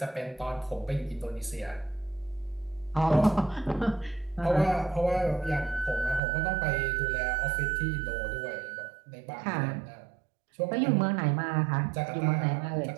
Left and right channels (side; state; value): left; drops out; at 6.2 s